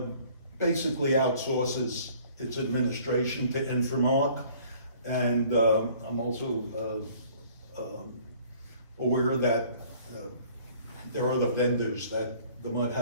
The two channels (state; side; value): inverted; both; correlation -0.55